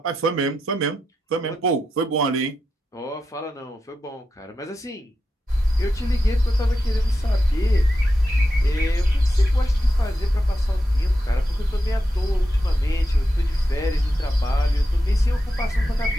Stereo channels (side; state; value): both; normal; correlation 0.88